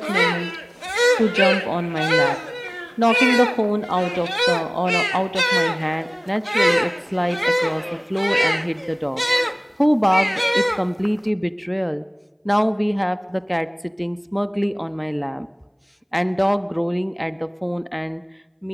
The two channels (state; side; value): identical; both; correlation 1.00